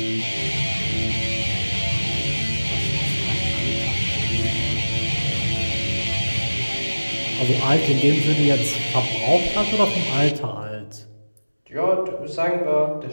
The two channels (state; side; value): inverted; both; correlation -1.00